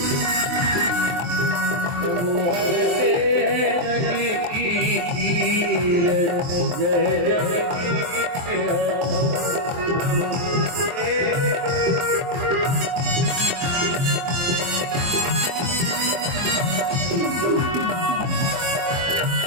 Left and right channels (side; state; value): left; late; 23 ms